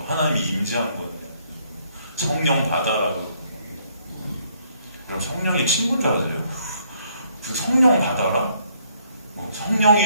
하나님이 임재한 거예요. 성령 받아라도. 그럼 성령이 친구인 줄 아세요? 그 성령 받아라? 뭐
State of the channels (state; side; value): inverted; both; correlation -0.67